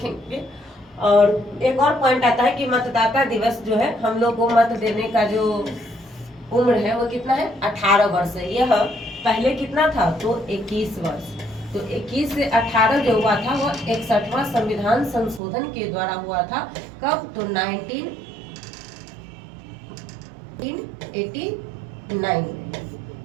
और एक और पॉइंट आता है कि मतदाता दिवस जो है, हम लोग को मत देने का जो उम्र है वो कितना है, 18 वर्ष है। यह पहले कितना था, तो 21 वर्ष। तो 21 से 18 जो हुआ था वो 61वां संविधान संशोधन के द्वारा हुआ था। कब, तो 1989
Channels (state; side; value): drops out; left; at 15.4 s